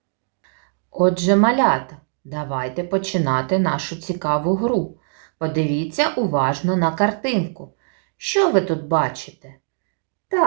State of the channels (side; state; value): left; silent; digital silence